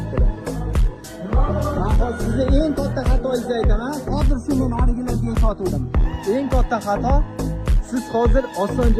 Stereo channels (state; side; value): identical; both; correlation 1.00